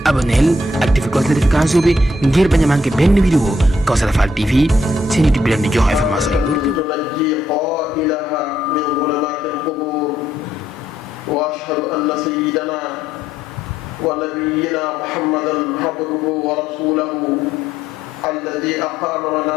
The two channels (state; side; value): normal; both; correlation 0.73